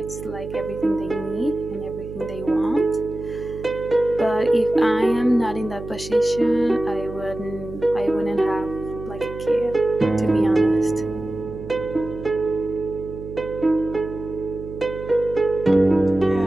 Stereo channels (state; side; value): noise; right; hum, 12 dB below the sound